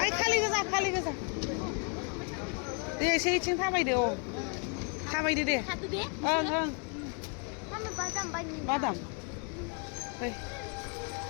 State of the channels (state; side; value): quieter; right; 38.5 dB